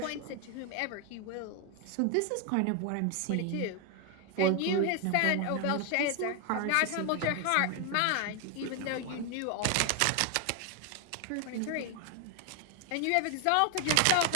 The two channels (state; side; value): different; both; correlation 0.01